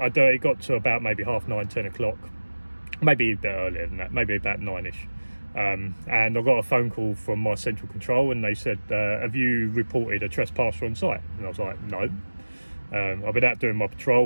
it got to about maybe 9:30, 10 o'clock, maybe a bit earlier than that, maybe about 9ish, and I got a phone call from my central control, and they said, have you reported a trespasser on site? And I was like, no. I've been out doing my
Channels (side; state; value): both; inverted; correlation -1.00